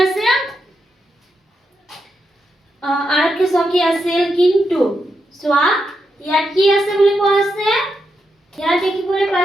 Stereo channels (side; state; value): both; normal; correlation 0.84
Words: আছে আৰক্ষী চকী আছিল কিন্তু চোৱা ইয়াত কি আছে বুলি কোৱা আছে ইয়াত দেখিবলৈ